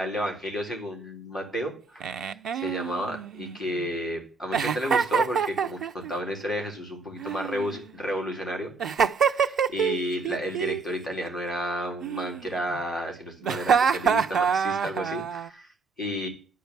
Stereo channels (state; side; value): quieter; left; 3.8 dB